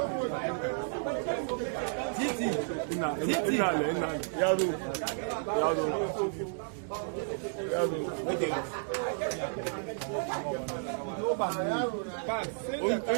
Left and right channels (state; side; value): silent; left; digital silence